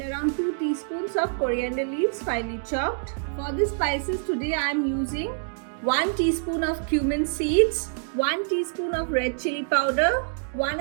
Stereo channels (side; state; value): left; silent; digital silence